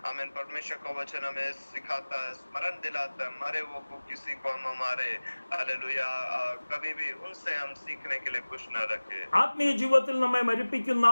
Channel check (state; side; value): inverted; both; correlation -1.00